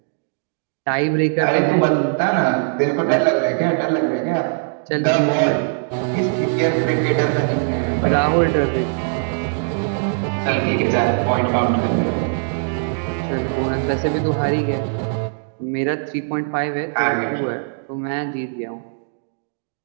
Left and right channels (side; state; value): left; silent; digital silence